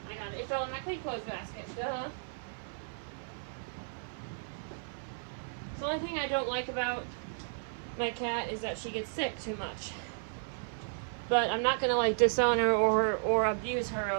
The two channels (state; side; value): silent; left; 55 dB below the other